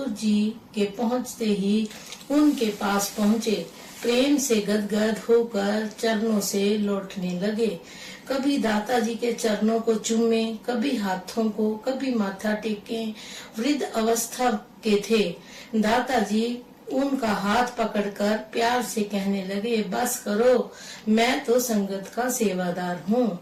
जी के पहुंचते ही उनके पास पहुंचे। प्रेम से गदगद होकर चरणों से लौटने लगे। कभी दाताजी के चरणों को चूमे, कभी हाथों को, कभी माथा टेके। वृद्ध अवस्था के थे। दाताजी उनका हाथ पकड़कर प्यार से कहने लगे, बस करो, मैं तो संगत का सेवादार हूँ,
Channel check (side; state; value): both; identical; correlation 1.00